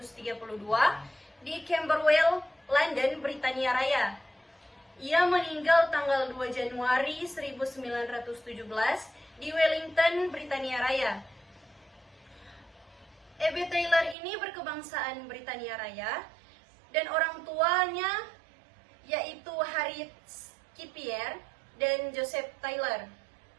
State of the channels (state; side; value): drops out; left; at 14.2 s